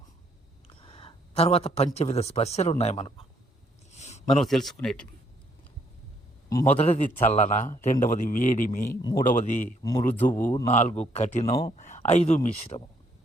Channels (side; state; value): both; normal; correlation 0.69